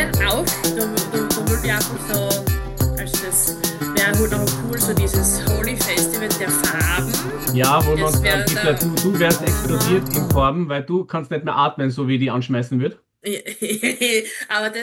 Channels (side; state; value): both; identical; correlation 1.00